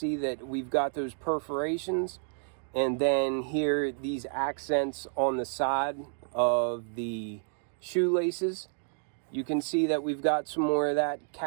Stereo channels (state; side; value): silent; left; digital silence